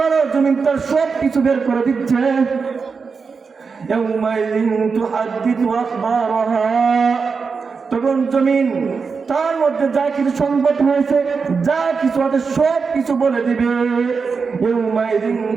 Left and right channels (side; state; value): left; quieter; 5.1 dB